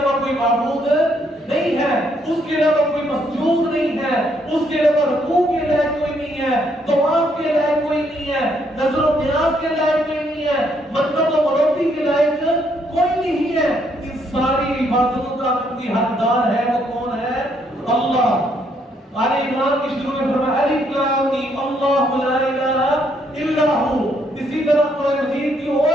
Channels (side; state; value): both; normal; correlation 0.71